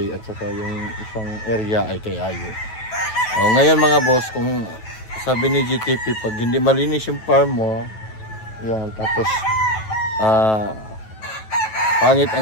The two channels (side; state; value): right; late; 9.2 ms